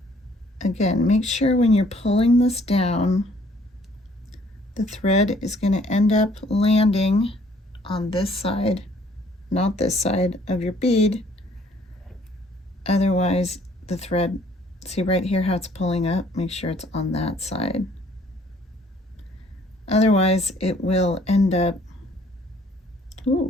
Again, make sure when you're pulling this down, the thread is going to end up landing on this side, not this side of your bead. Otherwise, the thread, see right here how it's pulling up? Make sure it's on that side. Otherwise, it will end up,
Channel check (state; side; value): normal; both; correlation 0.61